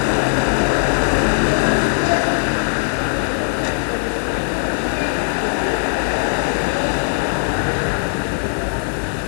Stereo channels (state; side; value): silent; right; digital silence